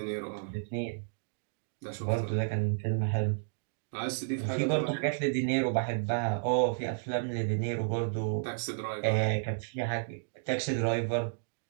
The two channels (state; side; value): silent; left; digital silence